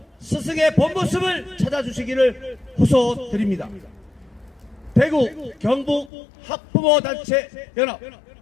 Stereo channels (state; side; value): drops out; right; at 6.1 s